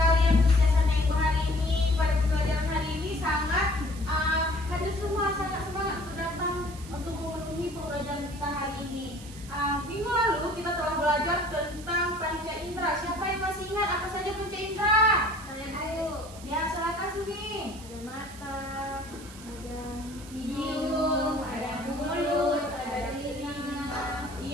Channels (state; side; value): noise; right; hiss, 18 dB below the sound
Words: yang kebiasaan Ibu hari ini. Pada pembelajaran hari ini sangat hadir semua, sangat semangat untuk datang untuk memenuhi pembelajaran kita hari ini. Minggu lalu kita telah belajar tentang panca indera. Siapa yang masih ingat apa saja panca indera? Ayo. Ya, silakan Sumi. Ada mata, ada hidung, ada mulut, ada telinga.